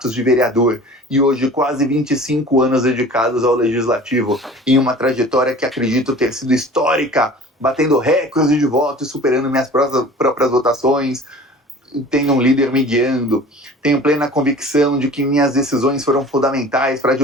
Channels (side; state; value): both; normal; correlation 0.43